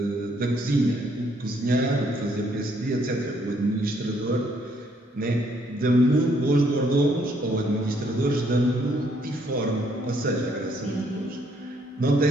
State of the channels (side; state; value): both; normal; correlation 0.69